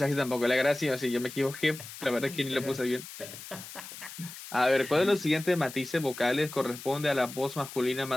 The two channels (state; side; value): noise; left; hiss, 13 dB below the sound